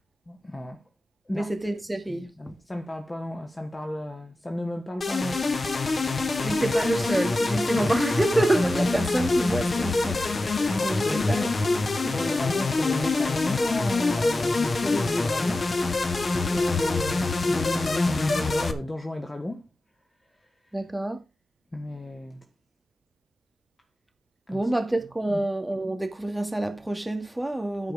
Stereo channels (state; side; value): normal; both; correlation 0.94